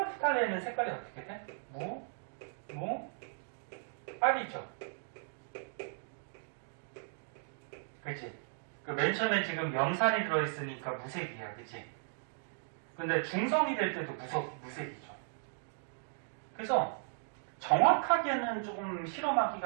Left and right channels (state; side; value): silent; left; digital silence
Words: 색깔이 어떻게 돼? 빨이죠. 그치? 그 맨 처음에 지금 염산이 들어있으니까 무색이야. 그치? 근데 중성이 될 때도 무색이죠. 그래서 정확하게는 조금